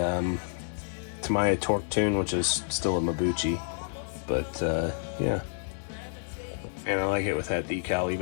Tamiya Torque Tune, which is still a Mabuchi, but yeah. And I like it with that decal,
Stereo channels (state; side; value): silent; right; digital silence